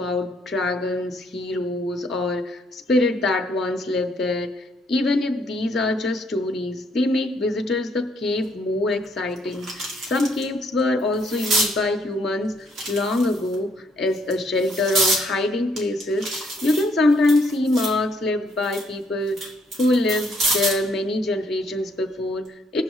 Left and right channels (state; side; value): normal; both; correlation 0.69